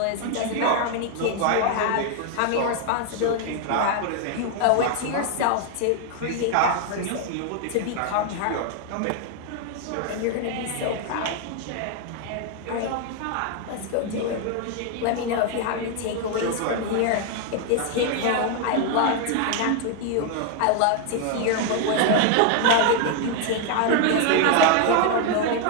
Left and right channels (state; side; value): different; both; correlation 0.00